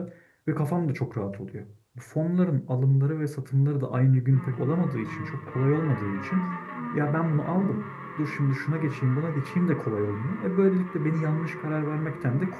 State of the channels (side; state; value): both; identical; correlation 1.00